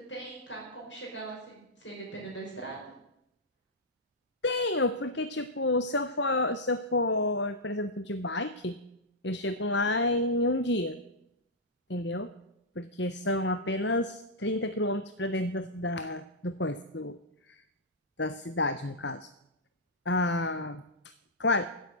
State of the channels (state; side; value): normal; both; correlation -0.09